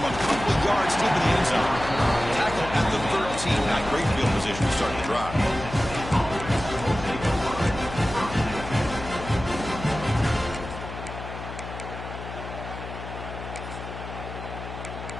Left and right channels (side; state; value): left; noise; hum, 10 dB below the sound